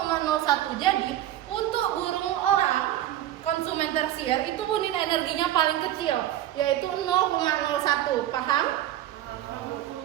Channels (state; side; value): quieter; left; 12.8 dB